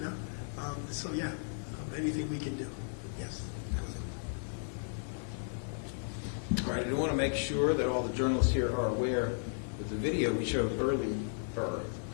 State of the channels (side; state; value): right; silent; 55 dB below the other